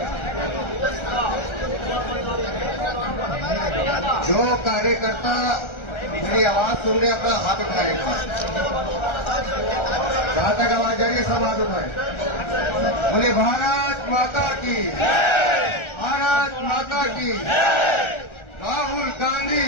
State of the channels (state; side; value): late; right; 1.3 ms